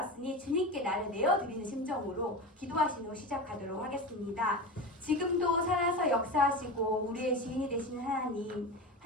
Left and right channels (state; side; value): normal; both; correlation 0.25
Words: 주님께 나를 내어드리는 심정으로 기도하신 후 시작하도록 하겠습니다. 지금도 살아서 역사하시고 우리의 주인이 되시는